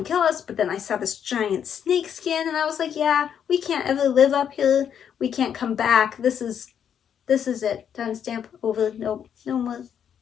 kill us. But then I saw this giant snake skin, and I was like, yeah, we can't ever live up here. We can't come back. This is it. Done, stamp, over. Nope, no more.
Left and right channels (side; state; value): right; quieter; 8.5 dB